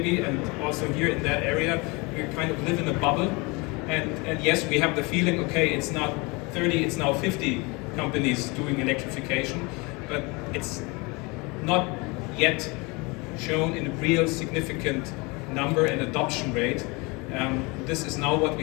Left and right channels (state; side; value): quieter; right; 27.0 dB